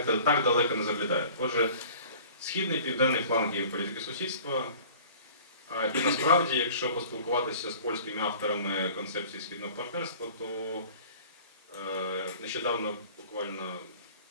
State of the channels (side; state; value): both; inverted; correlation -0.46